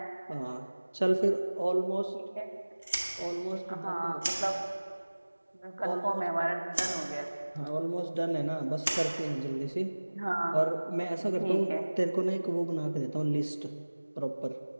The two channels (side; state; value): both; inverted; correlation -1.00